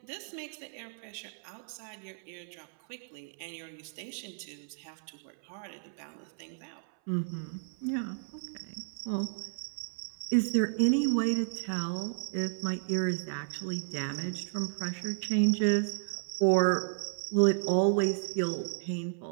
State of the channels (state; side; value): silent; left; 56 dB below the other